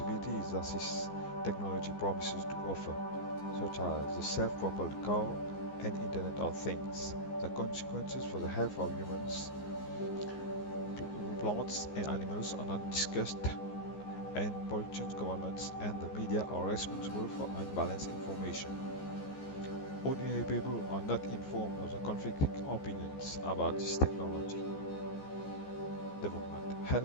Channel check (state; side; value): late; right; 15 ms